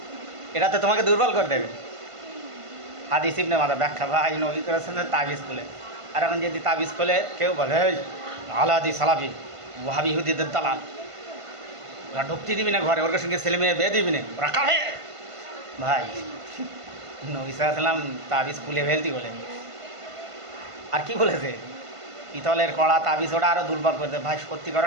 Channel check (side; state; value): left; late; 1.5 ms